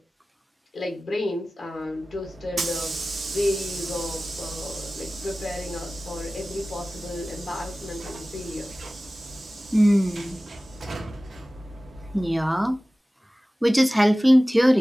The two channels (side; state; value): both; normal; correlation 0.97